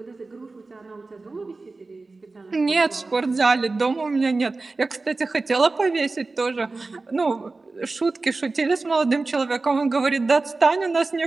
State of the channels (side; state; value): left; quieter; 3.6 dB